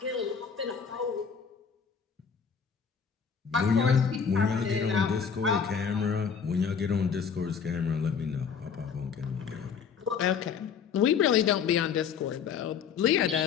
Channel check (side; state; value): right; quieter; 6.6 dB